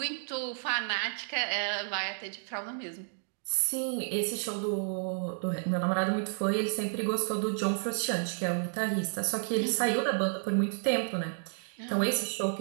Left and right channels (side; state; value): left; silent; digital silence